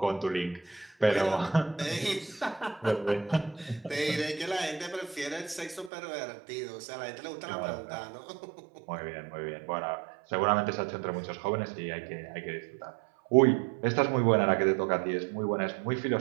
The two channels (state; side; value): drops out; left; at 5.9 s